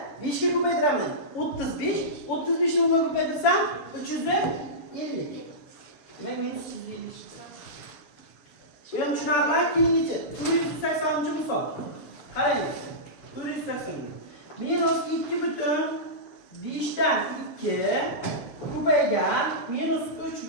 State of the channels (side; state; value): right; late; 7.1 ms